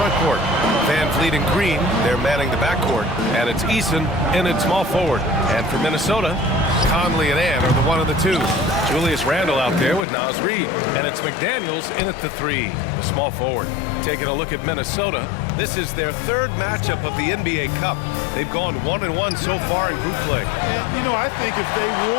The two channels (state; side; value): drops out; right; at 10.1 s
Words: court. Van Vliet and Green, they're manning the backcourt. And it's Eason in at small forward. And for Minnesota, Conley and Ann are the one of the two. Julius Randle out there with Naz Reid. And it's McDaniels in at the 3, the small forward. Taking a look at Minnesota, this is their third matchup of the NBA Cup. They've gone 1-1 so far in group play. And, you know, I think if they